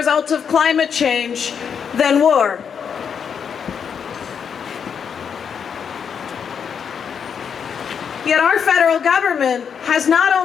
of climate change than war. Yet our federal government has not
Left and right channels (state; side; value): quieter; right; 7.1 dB